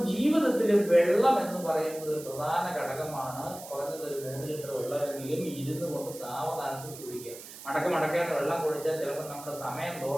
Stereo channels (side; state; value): right; noise; hiss, 15 dB below the sound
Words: ജീവിതത്തിൽ വെള്ളം എന്ന് പറയുന്നത് ഒരു പ്രധാന ഘടകമാണ്. കുറഞ്ഞത് ഒരു 3 ലിറ്റർ വെള്ളമെങ്കിലും ഇരുന്ന് കൊണ്ട് സാവധാനത്തിൽ കുടിക്കുക. മടക്കാതെ വെള്ളം കുടിച്ചാൽ ചിലപ്പോൾ നമ്മുടെ സമയം